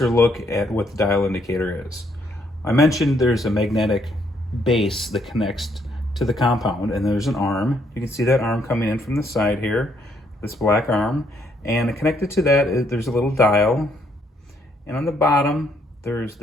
look at what the dial indicator is. I mentioned there's a magnetic base that connects to the compound, and there's an arm. You can see that arm coming in from the side here, this black arm. And connected to that, there's a little dial. And on the bottom, there's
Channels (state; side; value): normal; both; correlation 0.70